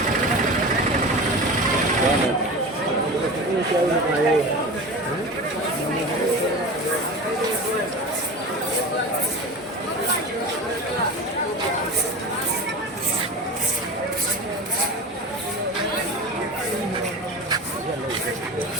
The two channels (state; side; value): normal; both; correlation 0.31